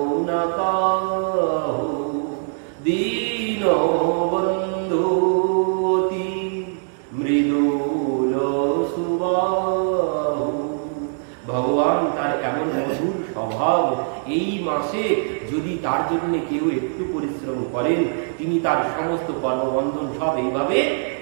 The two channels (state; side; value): silent; left; digital silence